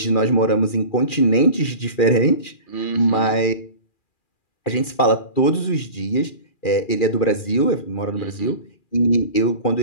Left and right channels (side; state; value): right; late; 2.4 ms